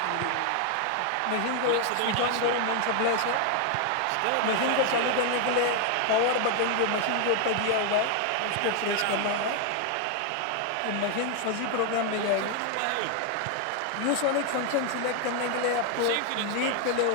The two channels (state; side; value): different; both; correlation 0.00